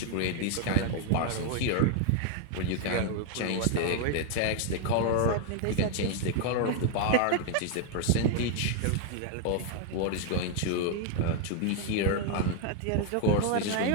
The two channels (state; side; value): different; both; correlation 0.00